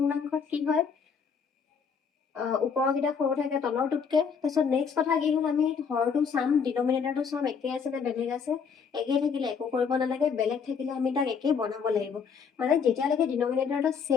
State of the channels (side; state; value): right; quieter; 6.3 dB